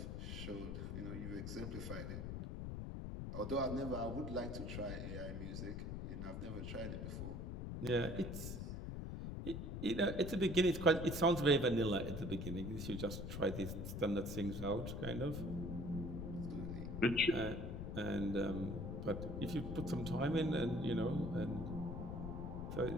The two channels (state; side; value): noise; left; rumble, 5 dB below the sound